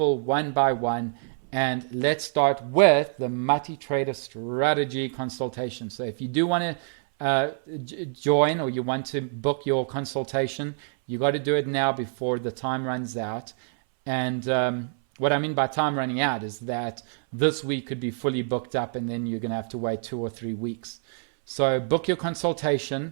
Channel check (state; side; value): silent; left; 58 dB below the other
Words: one by one. And let's start with the multi-trader strategy consultation. So if you do want to join or you want to book your consultation, you got to do it now before the time runs out. And what I mean by time running out is that this week could be fully booked up and then you're going to have to wait 2 or 3 weeks. So book your consultation